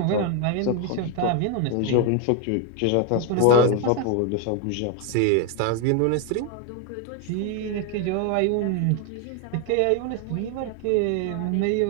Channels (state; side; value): different; both; correlation 0.01